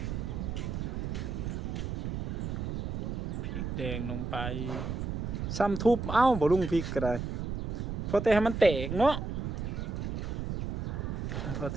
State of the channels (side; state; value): right; noise; rumble, 3 dB below the sound